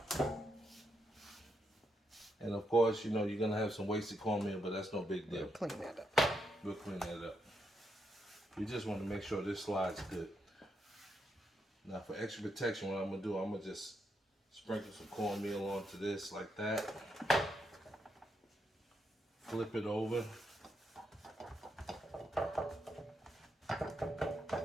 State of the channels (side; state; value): both; normal; correlation 0.81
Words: And of course, you know, you're going to have some wasted cornmeal, but that's no big deal. We'll clean that up. We'll clean that up. We just want to make sure this slides good. Now for extra protection, what I'm going to do, I'm going to just sprinkle some cornmeal onto this like that. Flip it over.